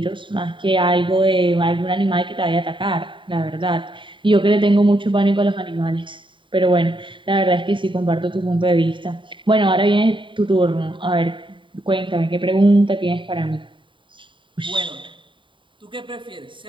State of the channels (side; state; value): left; late; 0.24 ms